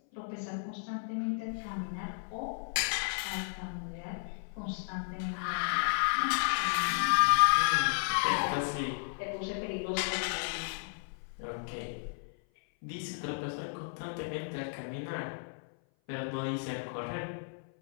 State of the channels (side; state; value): right; silent; 55 dB below the other